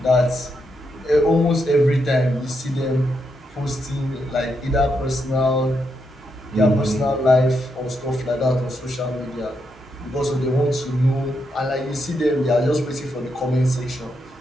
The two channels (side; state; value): both; normal; correlation 0.81